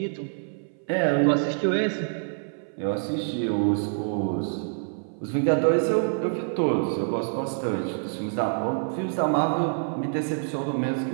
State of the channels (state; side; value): silent; left; 57 dB below the other